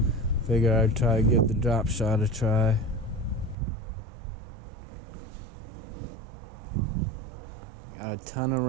figure I'd try to give the drop shot a try. Got a ton of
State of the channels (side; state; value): left; drops out; at 3.6 s